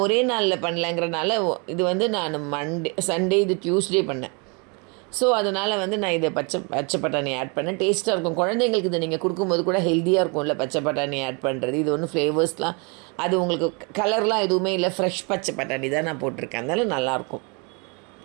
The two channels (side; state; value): left; quieter; 32.8 dB